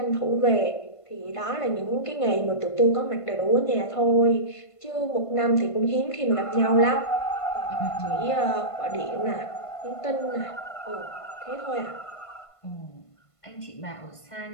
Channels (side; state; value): right; late; 1.5 ms